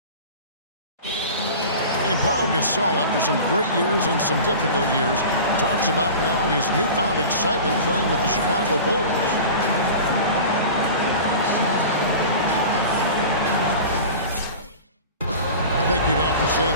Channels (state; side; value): inverted; both; correlation -0.36